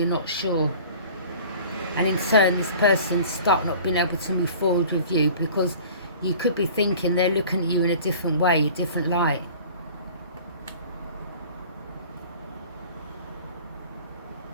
not sure. And in turn, this person's stuck, not being able to move forward with you, because you could be thinking they're looking at you in a different way, a different light.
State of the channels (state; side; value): inverted; both; correlation -0.45